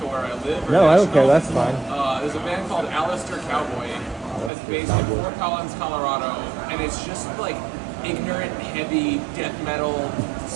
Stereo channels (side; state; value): left; drops out; at 4.5 s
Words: where I live? Or No, I don't care. national? That's fine. There's a band called Alistair Cowboy that's based in Fort Collins, Colorado, and it's just like ignorant, heavy death metal,